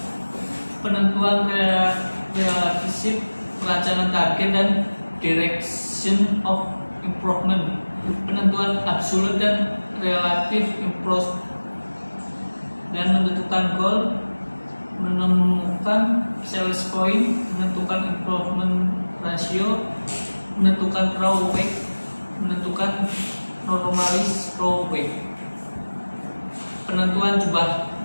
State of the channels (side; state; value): both; inverted; correlation -1.00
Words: penentuan relationship, perencanaan target dan direction of improvement, penentuan absolute dan relative improvement, dan menentukan goal, menemukan sales point, menentukan improvement ratio, menentukan raw weight, menentukan normalis raw weight. Penentuan jumlah